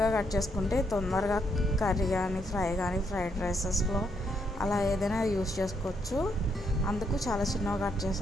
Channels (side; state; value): both; normal; correlation 0.75